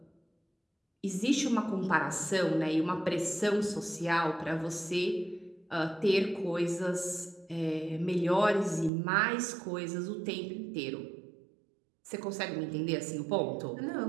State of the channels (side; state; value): left; drops out; at 8.9 s